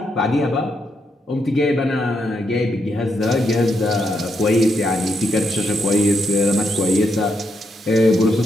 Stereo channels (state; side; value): normal; both; correlation 0.80